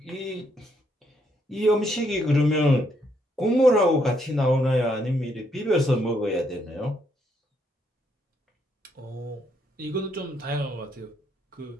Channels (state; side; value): normal; both; correlation 0.74